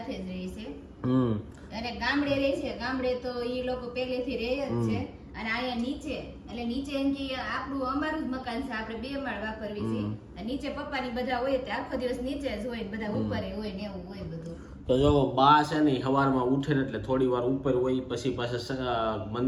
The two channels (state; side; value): identical; both; correlation 1.00